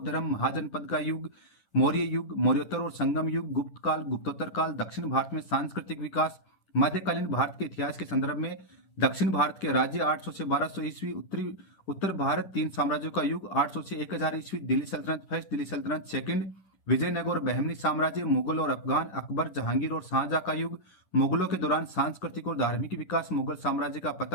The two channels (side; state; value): right; late; 10 ms